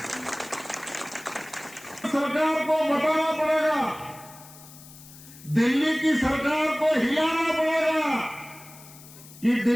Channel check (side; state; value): left; noise; hiss, 19 dB below the sound